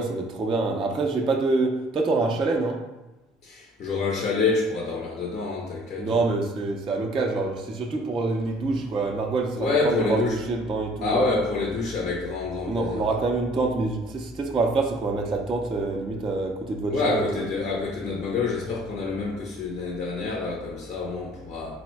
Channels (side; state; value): both; normal; correlation 0.55